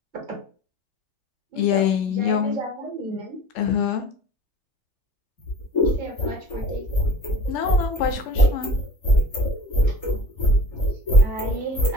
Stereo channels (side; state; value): right; late; 3.3 ms